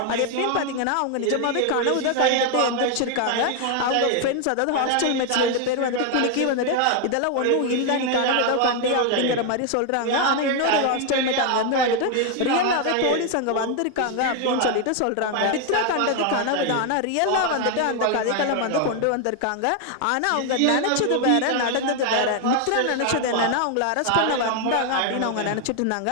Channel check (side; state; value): both; different; correlation 0.01